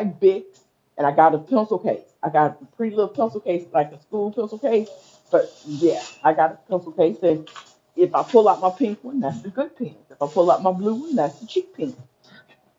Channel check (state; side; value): identical; both; correlation 1.00